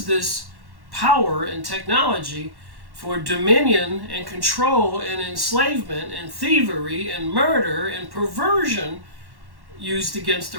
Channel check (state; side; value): late; left; 1.1 ms